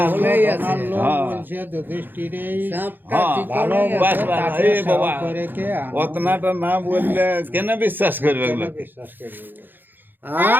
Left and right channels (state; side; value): late; left; 0.092 ms